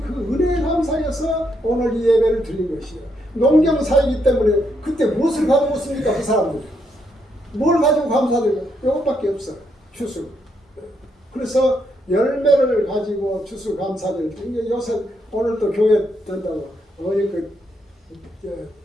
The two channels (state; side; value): normal; both; correlation 0.77